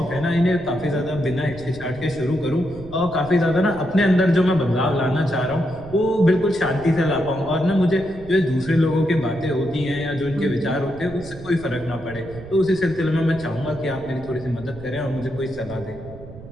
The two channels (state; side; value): noise; right; rumble, 16 dB below the sound